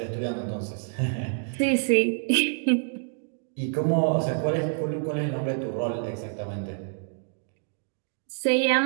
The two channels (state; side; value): silent; left; 58 dB below the other